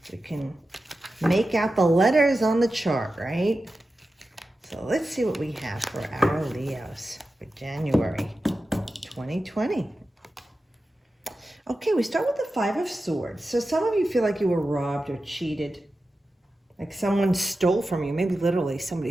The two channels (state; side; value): normal; both; correlation 0.92